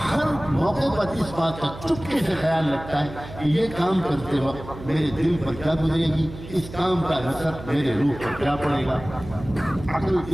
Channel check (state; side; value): noise; right; hum, 14 dB below the sound